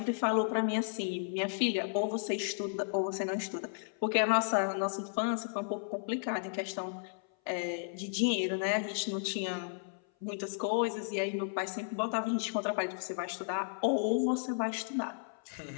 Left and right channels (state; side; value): silent; right; 55 dB below the other